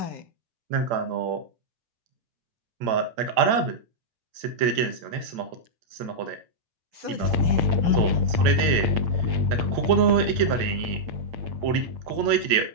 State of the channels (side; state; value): left; late; 8.8 ms